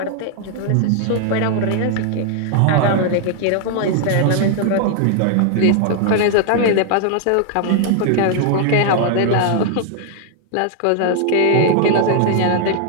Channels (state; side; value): different; both; correlation 0.00